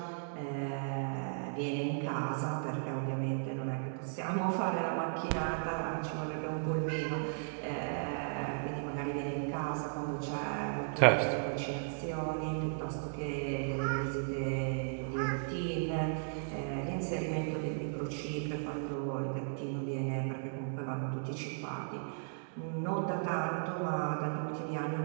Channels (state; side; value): silent; left; digital silence